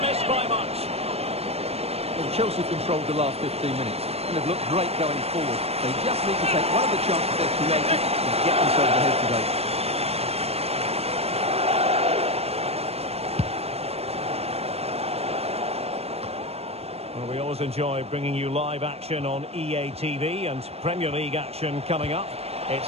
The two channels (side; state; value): left; late; 0.29 ms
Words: miss by much. Well, Chelsea controlled the last 15 minutes and have looked great going forward. They just need to take one of the chances they've created and get themselves ahead today. Well, we always enjoy bringing you live action on EA TV and Premier League action coming up.